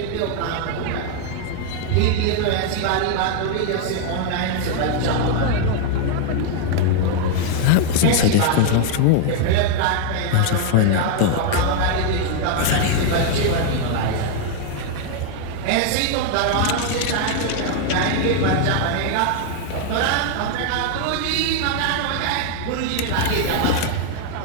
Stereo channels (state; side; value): different; both; correlation 0.00